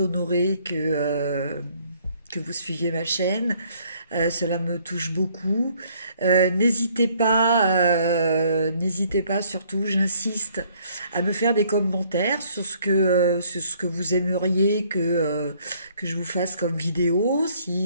que vous suiviez ma chaîne. Cela me touche beaucoup. N'hésitez pas surtout, j'insiste, à me faire des commentaires sur ce que vous aimeriez que je vous fasse comme vidéo.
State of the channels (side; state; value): both; inverted; correlation -0.63